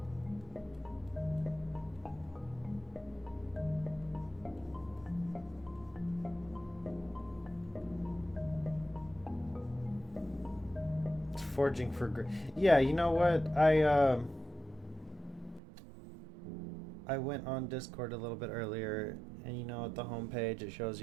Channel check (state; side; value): drops out; left; at 15.6 s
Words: Forging for yeah, you know what? I went on Discord a little bit earlier, and you know at the homepage it shows